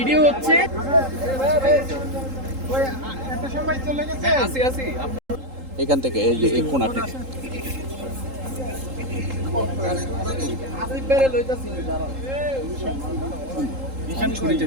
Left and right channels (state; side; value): late; left; 3.8 ms